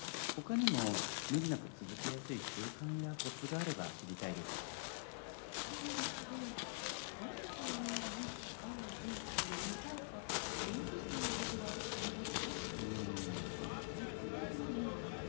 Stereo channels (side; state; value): right; silent; digital silence